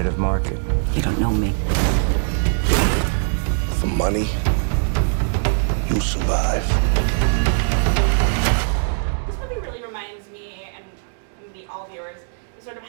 market. You don't know me. For money, you'll survive. This movie really reminds me, and maybe all viewers, sort of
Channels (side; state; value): left; silent; digital silence